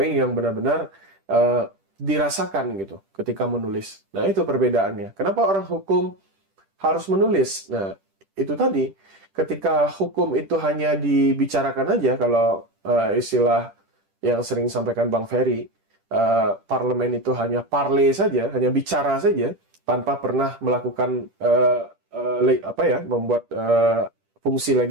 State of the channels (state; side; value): late; left; 10 ms